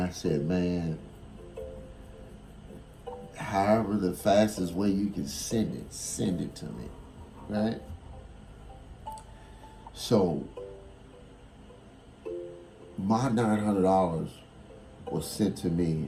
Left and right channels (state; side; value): identical; both; correlation 1.00